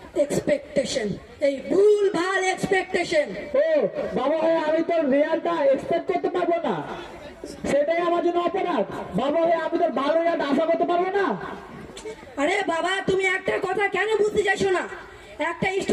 এক্সপেকটেশন, এই ভুল ভাল এক্সপেকটেশন। ও বাবা হয়ে আমি তোর রেজাল্টটা এক্সপেক্ট করতে পারবো না, সেটাই আমার জন্য অপরাধ। বাবা হয়ে আমি তোর ভালো রেজাল্ট আশা করতে পারবো না? আরে বাবা, তুমি একটা কথা কেন বুঝতে চাইছো না? একটা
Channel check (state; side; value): identical; both; correlation 1.00